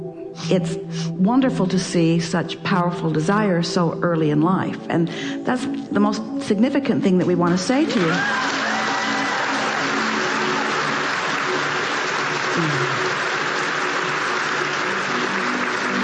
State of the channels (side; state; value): both; identical; correlation 1.00